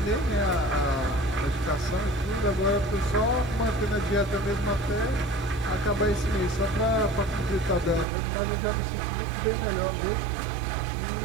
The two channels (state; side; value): drops out; left; at 8.1 s